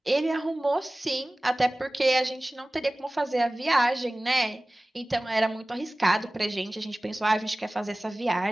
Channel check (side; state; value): both; normal; correlation 0.98